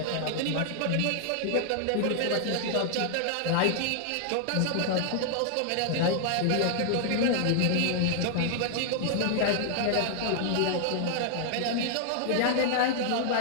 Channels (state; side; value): different; both; correlation 0.00